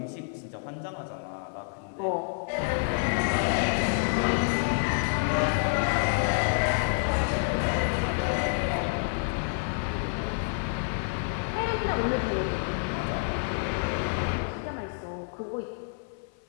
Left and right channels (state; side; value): silent; right; 59 dB below the other